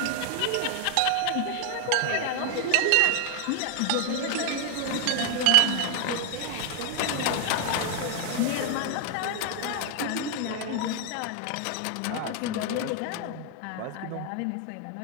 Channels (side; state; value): both; different; correlation 0.00